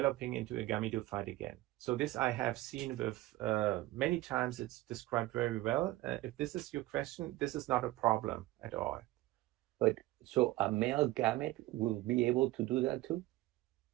into a gametophyte again. So this I have seen with many times. It's described very well. If this is your question, this is not a problem at all. But so a male gamete will be able to do that too?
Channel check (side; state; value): left; quieter; 17.6 dB